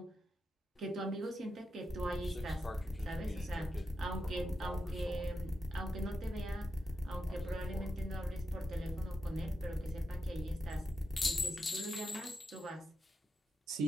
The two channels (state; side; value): normal; both; correlation 0.87